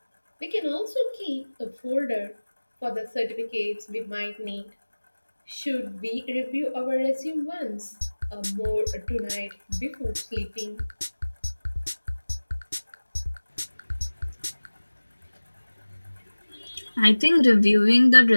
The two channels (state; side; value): inverted; both; correlation -1.00